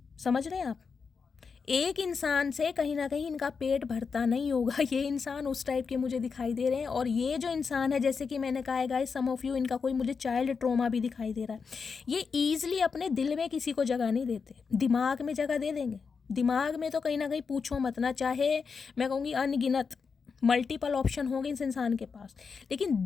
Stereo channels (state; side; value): quieter; right; 5.4 dB